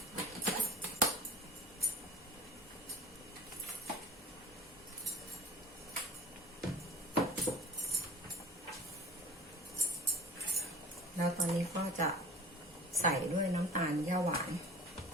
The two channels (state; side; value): normal; both; correlation 0.42